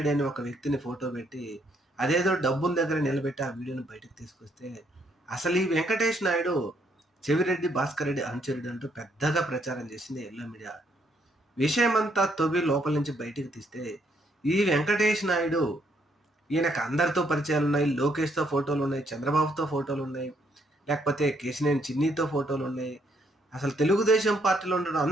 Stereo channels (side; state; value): both; normal; correlation 0.71